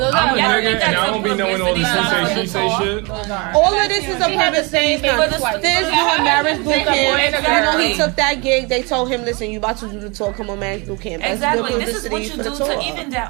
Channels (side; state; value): left; quieter; 28.7 dB